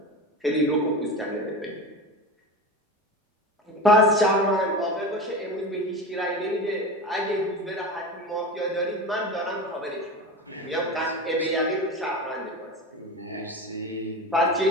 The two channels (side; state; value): both; normal; correlation 0.27